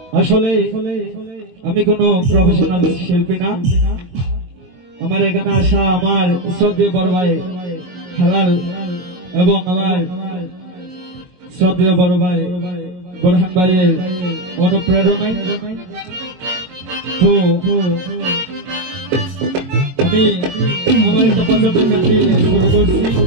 আসলে আমি কোনো প্রফেশনাল শিল্পী না। আমার এখানে আসা আমার শ্রদ্ধেয় বড় ভাই হালাল এবং আমার শ্রদ্ধেয় বড় ভাই বোরহান ভাইয়ের অনুপ্রেরণায়। তো আমি আমার একটা পছন্দের গান দিয়ে শুরু করছি।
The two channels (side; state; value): left; late; 22 ms